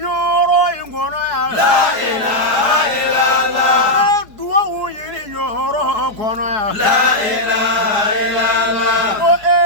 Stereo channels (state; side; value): late; left; 4.6 ms